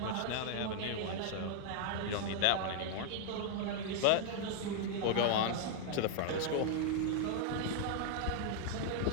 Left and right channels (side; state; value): both; different; correlation 0.00